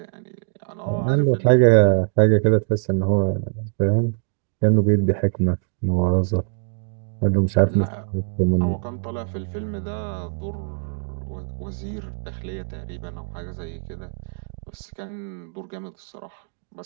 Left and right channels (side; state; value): left; silent; 62 dB below the other